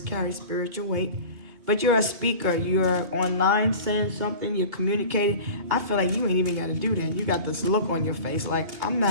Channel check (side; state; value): left; late; 2.8 ms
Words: spiritual weight. But you're a speaker. You're online saying something. You're communicating. I feel like you ain't even got to do that. You got this look on your face like, I'm